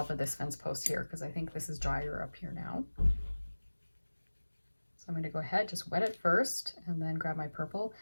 of this fence post here because I think this is drier up here now. So I'm going to go ahead, just wet it first and then grab my purple.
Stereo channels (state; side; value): inverted; both; correlation -1.00